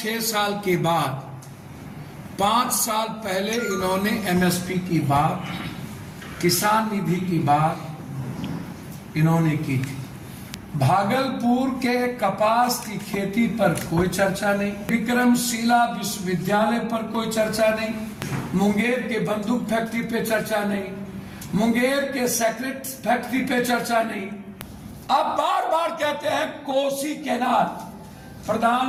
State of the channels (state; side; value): identical; both; correlation 1.00